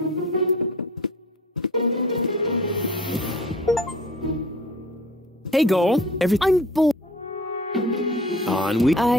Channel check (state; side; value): normal; both; correlation 0.45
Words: Hey, Goal. I'm bored. On we...